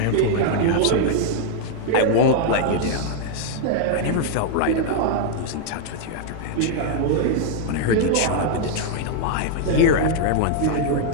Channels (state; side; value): different; both; correlation 0.00